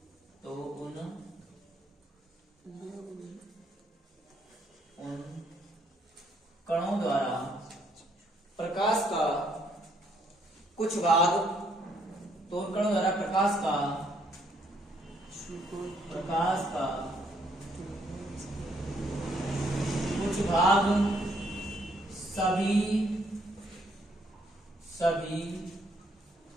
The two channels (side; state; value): both; normal; correlation 0.70